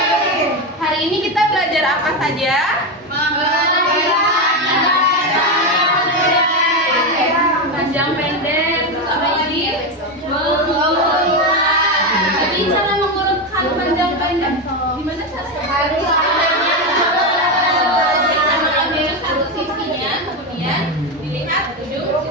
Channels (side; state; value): both; normal; correlation 0.12